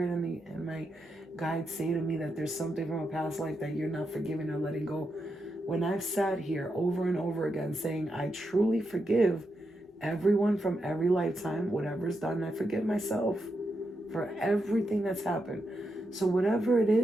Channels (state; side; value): normal; both; correlation 0.85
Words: and my guides say to me that there's something from a past life that you're not forgiving or letting go. When I've sat here over and over again saying I truly forgive everyone from every lifetime, whatever's done, I forgive myself for everything that's happened. So whatever it